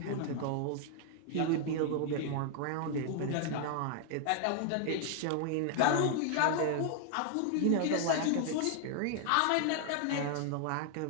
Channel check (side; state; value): both; different; correlation 0.00